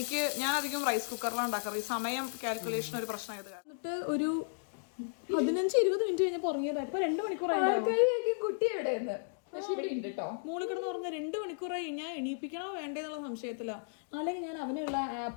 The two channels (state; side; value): silent; right; digital silence